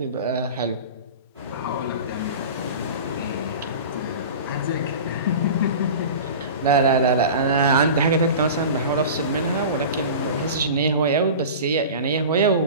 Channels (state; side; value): inverted; both; correlation -0.34